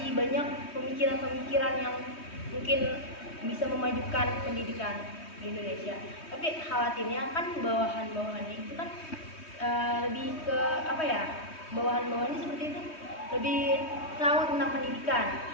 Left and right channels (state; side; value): late; right; 3.2 ms